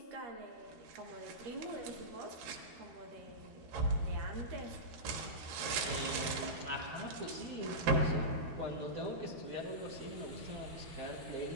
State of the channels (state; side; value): late; left; 13 ms